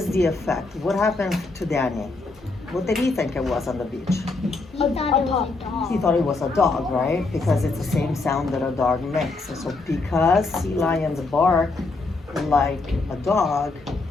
the effect? What happened to Danny? What did he think it was on the beach? He thought it was a dog. He thought it was a dog, right? Because it's the same sound that a dog makes. So because sea lions bark like a dog,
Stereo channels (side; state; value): right; quieter; 3.6 dB